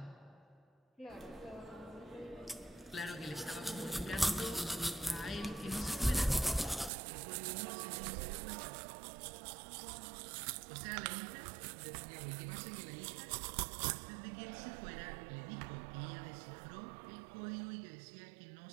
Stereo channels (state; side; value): drops out; left; at 6.9 s